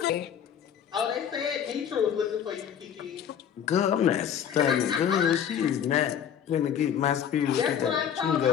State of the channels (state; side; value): quieter; right; 8.7 dB